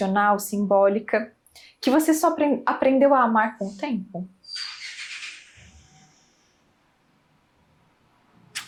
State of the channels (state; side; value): identical; both; correlation 1.00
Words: simbólica, que você só aprendeu a amar com o tempo?